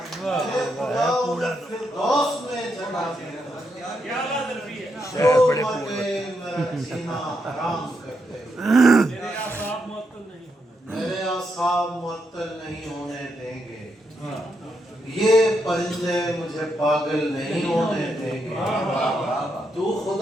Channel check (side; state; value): both; normal; correlation 0.81